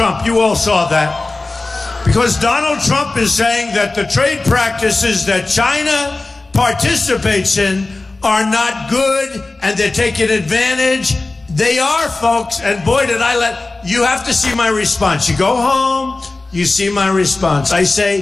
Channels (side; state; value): right; quieter; 3.3 dB